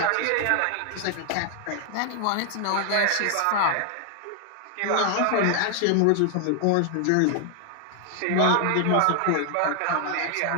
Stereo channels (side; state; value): both; different; correlation 0.00